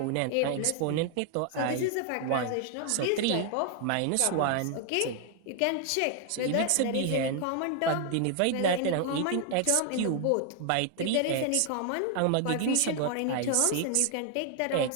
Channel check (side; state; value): both; different; correlation 0.00